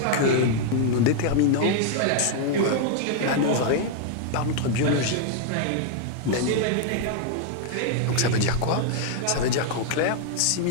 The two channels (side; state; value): both; different; correlation 0.00